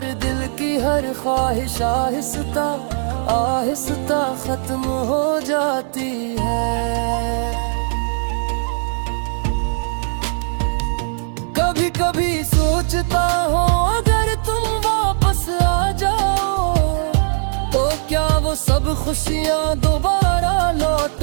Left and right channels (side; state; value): left; silent; 63 dB below the other